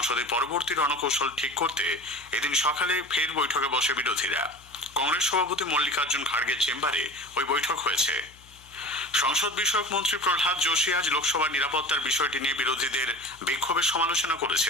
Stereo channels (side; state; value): left; noise; hum, 25 dB below the sound